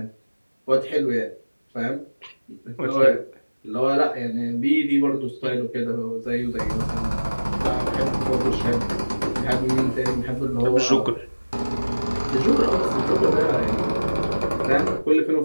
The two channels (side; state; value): both; inverted; correlation -1.00